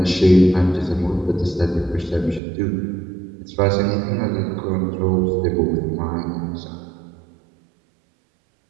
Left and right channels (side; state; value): left; drops out; at 2.4 s